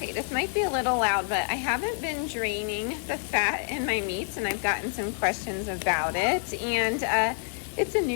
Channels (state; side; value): silent; right; 60 dB below the other